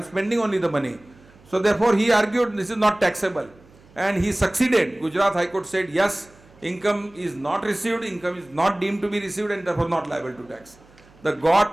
spending only the money. So therefore he argued this is not taxable. And he succeeded. Gujarat High Court said, yes, income is not received, income is not deemed to be received, and therefore not liable to tax. The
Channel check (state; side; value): noise; right; hum, 27 dB below the sound